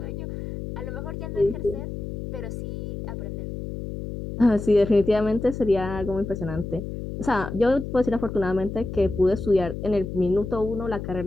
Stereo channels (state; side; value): noise; left; hum, 7 dB below the sound